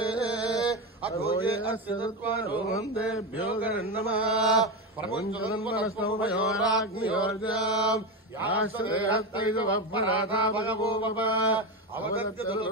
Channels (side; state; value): both; normal; correlation 0.16